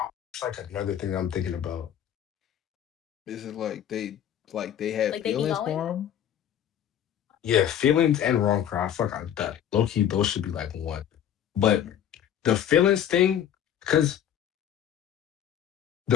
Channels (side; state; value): right; quieter; 10.0 dB